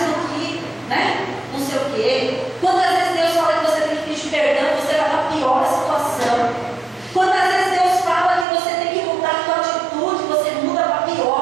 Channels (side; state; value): left; drops out; at 8.5 s